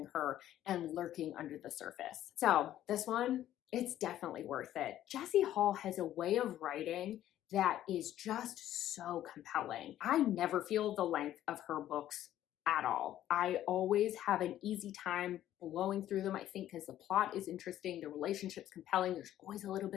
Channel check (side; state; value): right; quieter; 12.5 dB